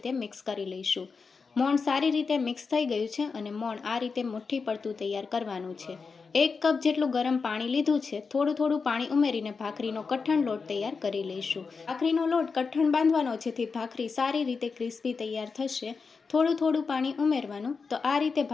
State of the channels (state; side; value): quieter; right; 4.9 dB